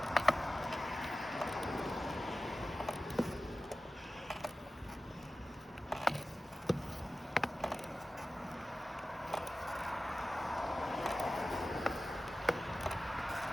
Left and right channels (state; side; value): normal; both; correlation 0.95